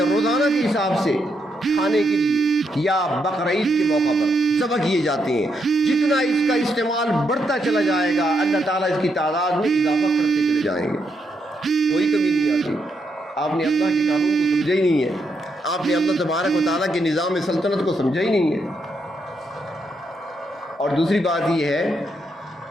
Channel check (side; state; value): both; normal; correlation 0.79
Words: روزانہ کے حساب سے کھانے کے لیے یا بقرعید کے موقع پر ذبح کیے جاتے ہیں، جتنا اس کا استعمال بڑھتا چلا جائے گا اللہ تعالیٰ اس کی تعداد میں اضافہ کرتے چلے جائیں گے. کوئی کمی نہیں آتی. آپ نے اللہ کے قانون کو سمجھا ہی نہیں ہے، آپ نے اللہ تبارک و تعالیٰ کے نظام سلطنت کو سمجھا ہی نہیں ہے. اور دوسری بات یہ ہے